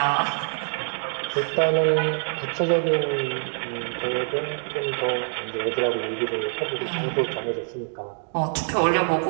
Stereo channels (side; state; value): left; silent; 58 dB below the other